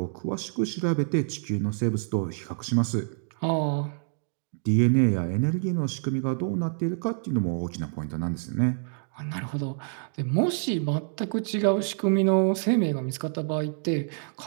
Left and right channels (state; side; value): silent; left; digital silence